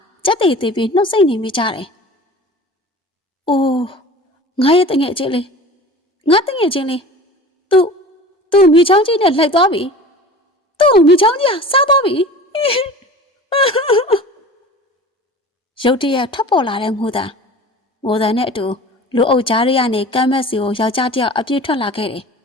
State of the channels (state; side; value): normal; both; correlation 0.39